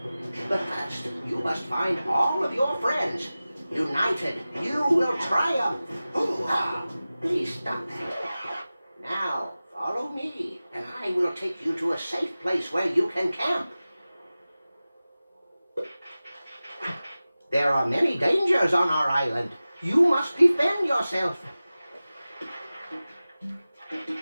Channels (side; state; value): both; inverted; correlation -0.96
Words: But first, you must find all of your friends. United, you will triumph. Hoo-ha! Please stop that. Now, follow me, and I will take you to a safe place where you can camp. There are many dangers on our island. You must defend yourself.